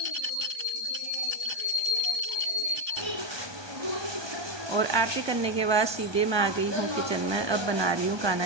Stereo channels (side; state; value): left; late; 1.2 ms